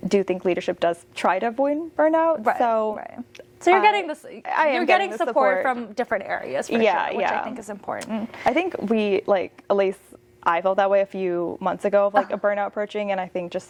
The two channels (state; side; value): identical; both; correlation 1.00